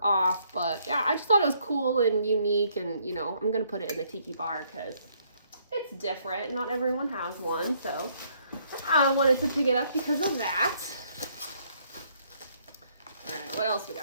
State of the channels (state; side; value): inverted; both; correlation -0.68